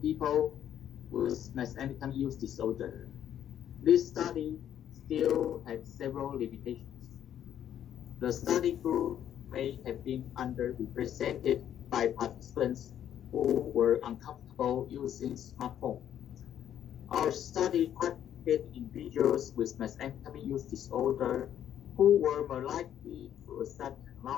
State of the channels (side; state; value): right; quieter; 10.3 dB